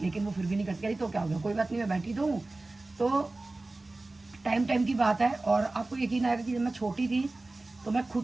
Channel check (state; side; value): quieter; left; 3.0 dB